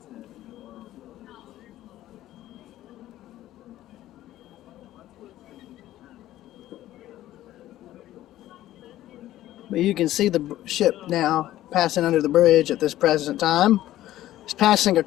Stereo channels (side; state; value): right; quieter; 14.2 dB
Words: But you can see the ship now passing under the bridge at this present time. It's passing a